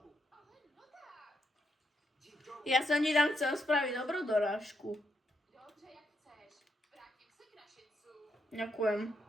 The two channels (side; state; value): both; normal; correlation 0.79